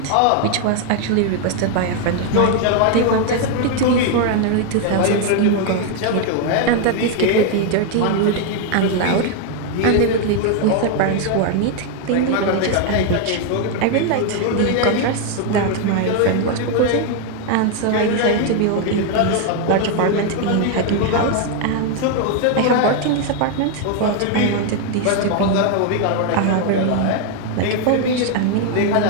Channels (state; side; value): different; both; correlation 0.01